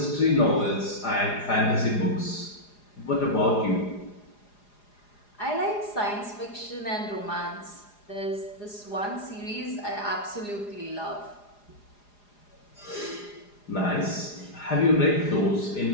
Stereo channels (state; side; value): late; right; 4.9 ms